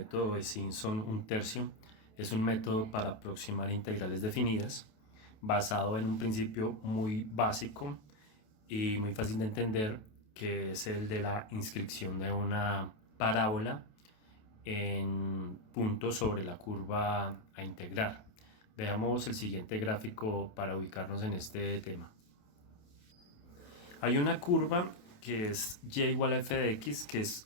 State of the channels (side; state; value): right; late; 27 ms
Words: de Simpson un tercio. Es un método para aproximar integrales definidas, basado en un principio muy básico y muy fácil de entender, que es el de la inscripción de una parábola en puntos sobre la curva a integrar. Veamos el siguiente gráfico para ubicarnos en este tema. Hay una curva que es y igual a f de x, que es